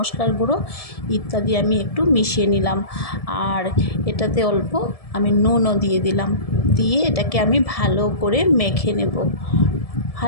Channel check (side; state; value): right; late; 1.7 ms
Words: গুঁড়ো ইত্যাদি আমি একটু মিশিয়ে নিলাম। আর এটাতে অল্প আমি নুনও দিয়ে দিলাম। দিয়ে এটাকে আমি ভালো করে মেখে নেব।